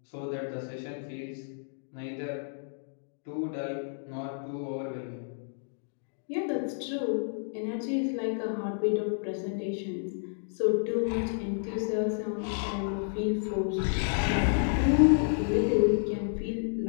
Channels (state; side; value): silent; right; digital silence